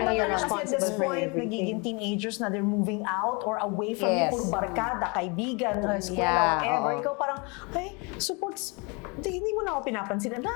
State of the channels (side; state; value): right; quieter; 30.6 dB